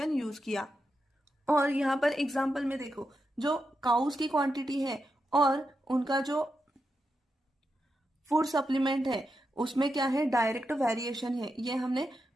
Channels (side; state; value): both; normal; correlation 0.86